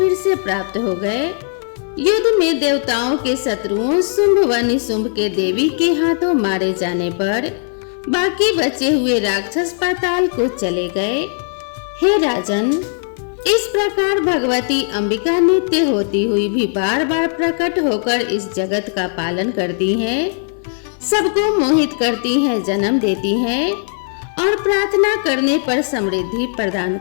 से प्राप्त हो गए। युद्ध में देवताओं के शत्रुओं शुंभ व निशुंभ के देवी के हाथों मारे जाने पर बाकी बचे हुए राक्षस पाताल को चले गए। हे राजन, इस प्रकार भगवती अंबिका नित्य होती हुई भी बार बार प्रकट होकर इस जगत का पालन करती हैं, सबको मोहित करती हैं, जन्म देती हैं और प्रार्थना करने पर समृद्धि प्रदान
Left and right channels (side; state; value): right; silent; 65 dB below the other